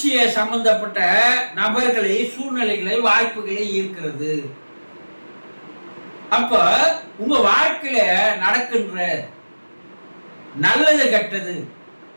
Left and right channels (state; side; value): inverted; both; correlation -1.00